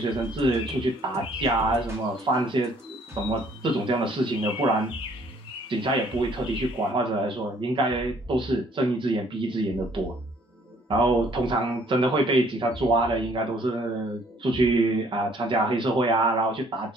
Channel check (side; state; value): both; normal; correlation 0.61